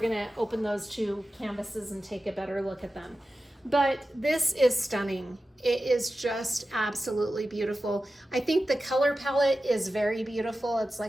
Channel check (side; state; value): both; normal; correlation 0.93